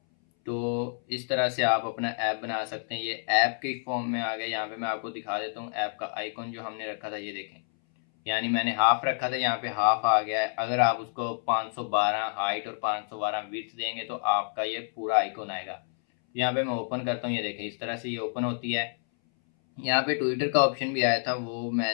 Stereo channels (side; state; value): right; silent; 59 dB below the other